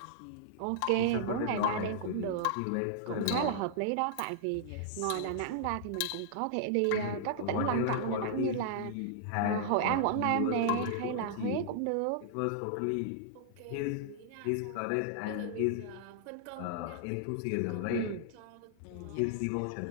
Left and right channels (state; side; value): different; both; correlation -0.01